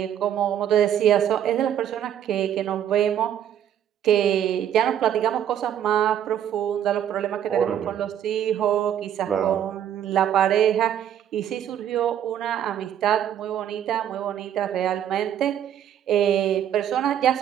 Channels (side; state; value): left; quieter; 10.1 dB